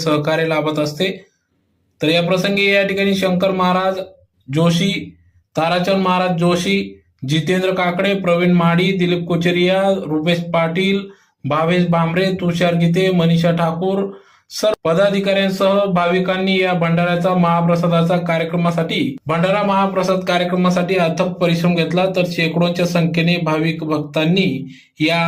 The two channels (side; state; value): both; identical; correlation 1.00